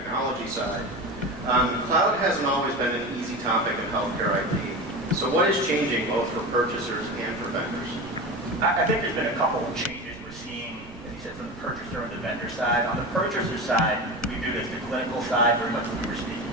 side, cloud hasn't always been an easy topic in healthcare IT. So what is changing both for purchasers and for vendors? I think there's been a couple of changes we're seeing, as you said, from the purchaser and the vendor side. On the purchaser side, we view it as the clinical side, very much what we were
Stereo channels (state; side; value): noise; right; rumble, 18 dB below the sound